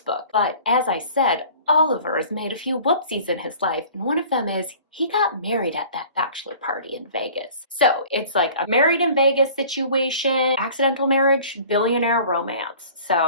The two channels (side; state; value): both; inverted; correlation -0.46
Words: book. But as I said, Oliver has made a few whoopsies in his life, and one of them is he got married at that bachelor party in Vegas. So it's like a married in Vegas situation, accidental marriage, billionaire romance.